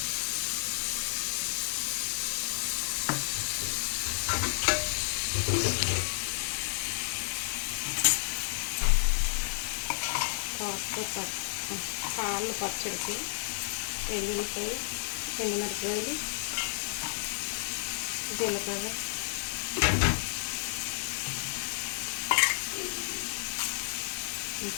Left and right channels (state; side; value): silent; right; 57 dB below the other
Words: పాలు పచ్చడికి వెల్లుల్లిపాయ, ఎండుమిరపకాయలు, జీలకర్ర,